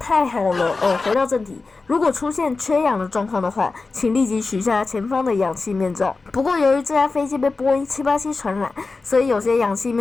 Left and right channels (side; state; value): right; quieter; 3.9 dB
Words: 好了哦！回到正题，如果出现缺氧的状况的话，请立即取下前方的氧气面罩。不过由于这架飞机被波音787传染，所以有些氧气